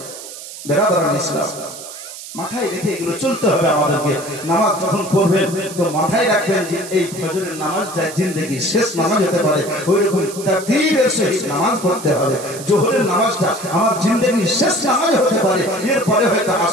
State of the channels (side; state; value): right; noise; hiss, 13 dB below the sound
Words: বেরাদার ইসলাম, মাথায় রেখে এগুলো চলতে হবে আমাদেরকে। নামাজ যখন পড়বেন তো মাথায় রাখবেন যে এই ফজরের নামাজটা জিন্দেগির শেষ নামাজ হতে পারে, ওই রকম তাকবীরের সহিত নামাজ পড়তে হবে। জোহরের নামাজটা আমার জিন্দেগির শেষ নামাজ হতে পারে, এরপরে হয়তো